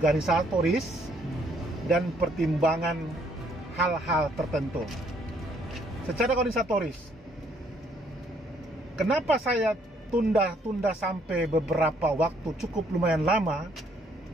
dan pertimbangan hal-hal tertentu. Secara organisatoris, kenapa saya tunda sampai beberapa waktu cukup lumayan lama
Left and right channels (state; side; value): normal; both; correlation 0.67